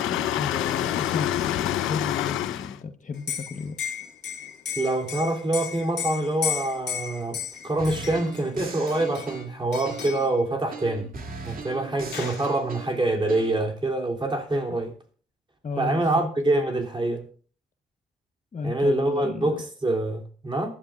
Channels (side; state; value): both; normal; correlation 0.65